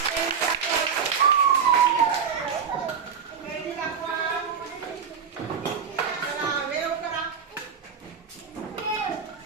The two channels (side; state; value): left; quieter; 6.7 dB